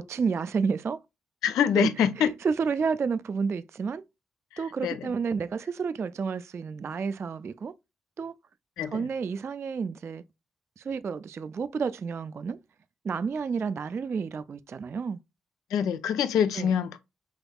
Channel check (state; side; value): normal; both; correlation 0.70